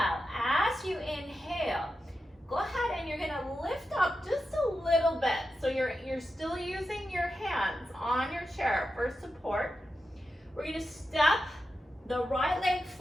as you inhale, go ahead and you're gonna lift up just a little bit. So you're still using your hands on your chair for support. We're gonna step the right leg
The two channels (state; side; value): normal; both; correlation 0.89